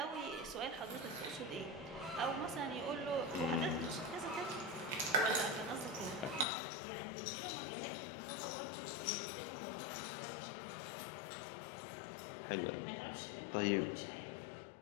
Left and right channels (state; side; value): drops out; right; at 6.5 s